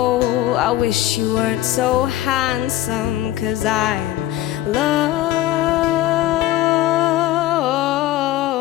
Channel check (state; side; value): quieter; right; 14.5 dB